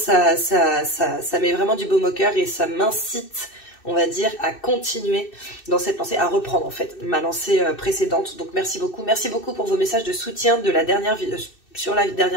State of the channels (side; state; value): right; late; 2.6 ms